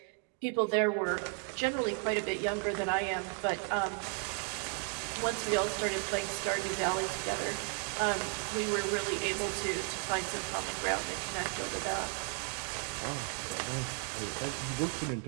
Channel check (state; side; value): quieter; left; 33.6 dB